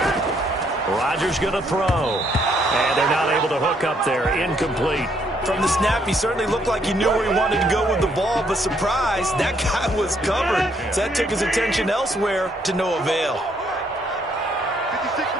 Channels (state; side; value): normal; both; correlation 0.70